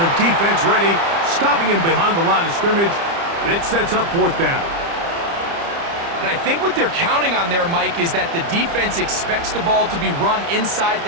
defense ready, stopping him behind the line of scrimmage. And it sets up 4th down. And I think what they're counting on there, Mike, is that the defense expects the ball to be run inside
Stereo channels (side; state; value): left; late; 30 ms